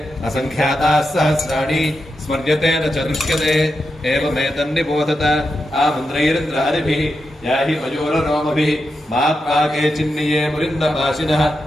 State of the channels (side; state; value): both; normal; correlation 0.87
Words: असङ्ख्याताः सहस्राणि स्मर्यते न च दृश्यते एवमेतन्निबोधत आमन्द्रैरिन्द्रहरिभिः याहि मयूररोमभिः मात्वाके चिन्निये मुरिन्दपाशिनः